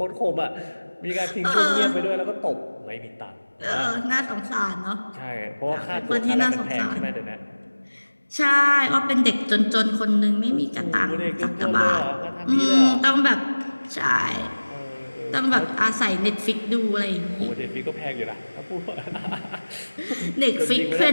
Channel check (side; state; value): both; inverted; correlation -1.00